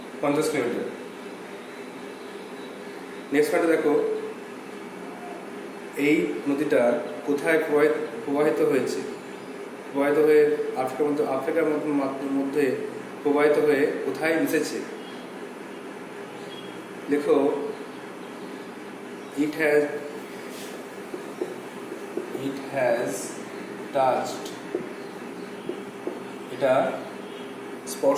কিলোমিটার। নেক্সট পয়েন্টে দেখো এই নদীটা কোথায় প্রবাহিত হয়েছে। প্রবাহিত হয়ে আফ্রিকার মধ্যে প্রবাহিত হয়ে কোথায় মিশেছে। লেখো it has touched, এটা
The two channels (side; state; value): both; identical; correlation 1.00